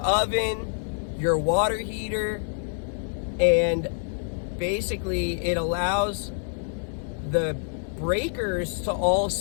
your water heater, and basically it allows the breakers to all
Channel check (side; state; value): right; silent; digital silence